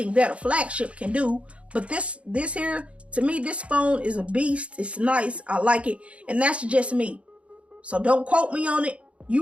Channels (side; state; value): left; late; 0.062 ms